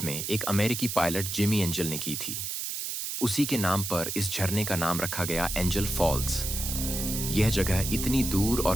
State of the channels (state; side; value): noise; right; hiss, 4 dB below the sound